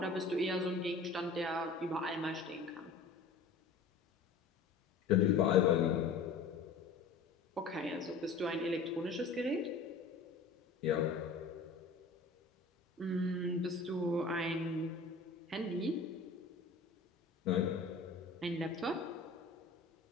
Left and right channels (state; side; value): quieter; right; 4.1 dB